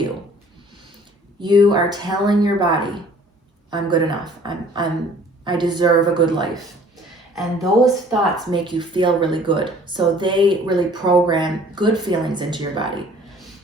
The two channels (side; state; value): both; normal; correlation 0.53